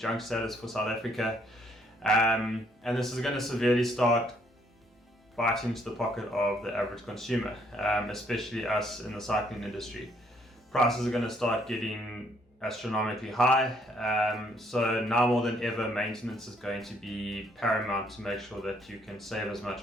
status for South Africa. And this is going to severely start biting into the pocket of the average consumer, especially us in the cycling industry. Prices are going to start getting astronomically high, so now more than ever maintenance is going to be paramount to make sure that you can save as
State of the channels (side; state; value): both; normal; correlation 0.68